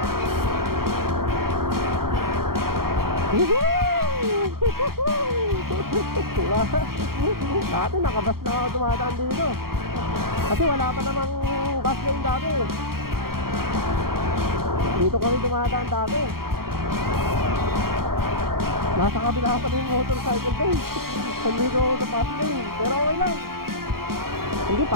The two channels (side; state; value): left; late; 0.93 ms